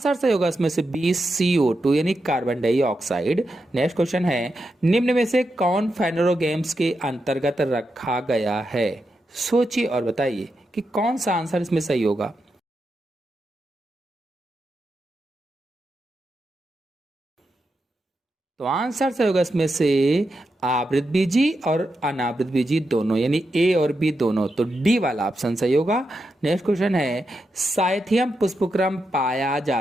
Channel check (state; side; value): normal; both; correlation 0.86